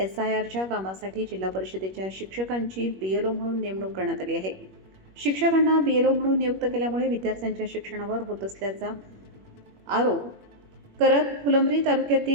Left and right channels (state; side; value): late; left; 21 ms